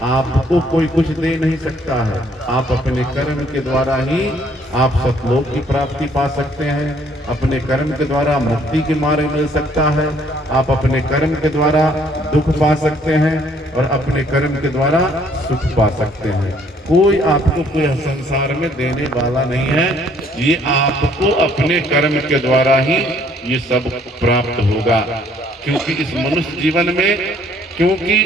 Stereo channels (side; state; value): both; normal; correlation 0.63